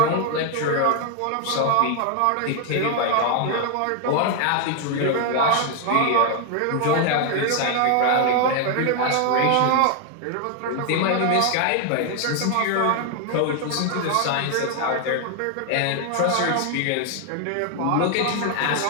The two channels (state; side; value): different; both; correlation 0.00